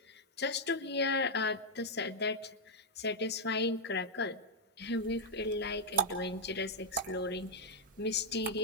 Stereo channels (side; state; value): both; normal; correlation -0.04